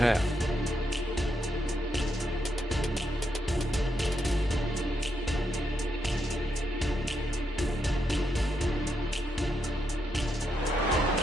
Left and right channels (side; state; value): both; normal; correlation 0.81